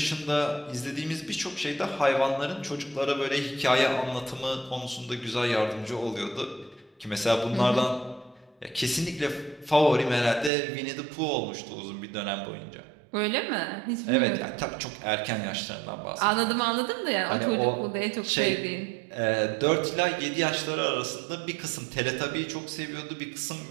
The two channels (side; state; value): left; drops out; at 10.5 s